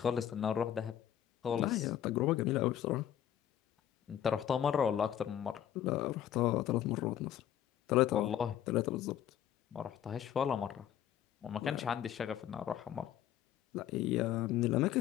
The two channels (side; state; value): right; quieter; 10.7 dB